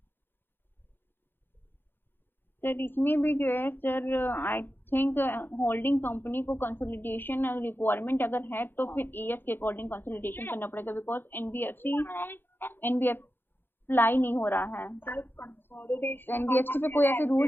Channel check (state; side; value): late; right; 0.10 ms